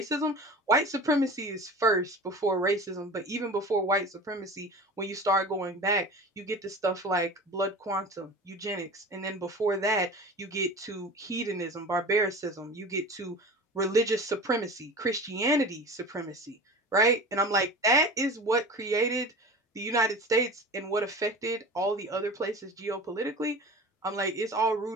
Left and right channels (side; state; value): both; normal; correlation 0.35